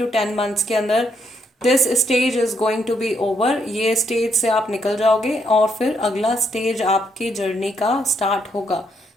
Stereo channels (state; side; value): normal; both; correlation 0.75